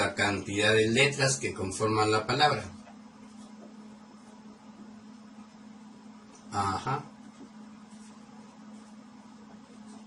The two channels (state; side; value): identical; both; correlation 1.00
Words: cantidad de letras que conforman la palabra. Ajá.